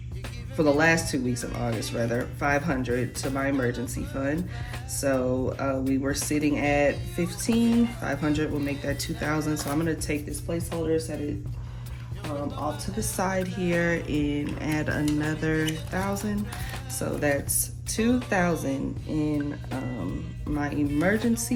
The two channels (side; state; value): both; identical; correlation 1.00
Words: for the last 2 weeks of August, rather, 500 to my emergency fund. So we were sitting at 15, 500 will make that 2,000. So I'm gonna take this placeholder, set it off to the side here, and add another 1,000. So that's 2,000 in my